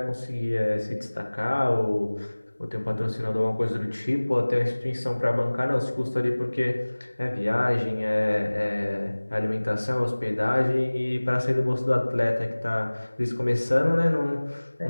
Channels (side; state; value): both; inverted; correlation -1.00